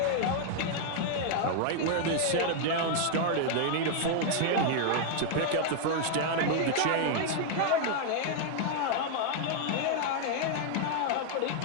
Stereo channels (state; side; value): different; both; correlation 0.00